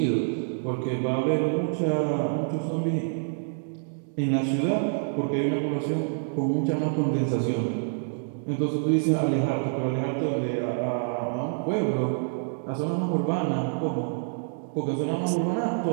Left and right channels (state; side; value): silent; left; digital silence